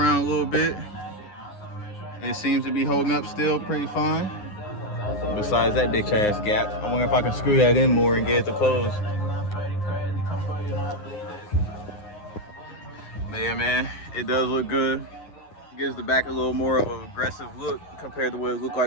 a little bit. It seems to be holding up still pretty fine. Besides that bitch ass gap. I wonder if I can screw that in more and get it to close. But yeah, man, it does look good. Gives the back a little more of an aggressive look compared to what it looked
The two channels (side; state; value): right; late; 9.6 ms